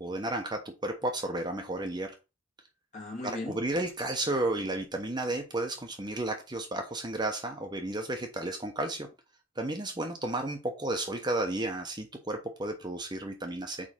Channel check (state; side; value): normal; both; correlation 0.45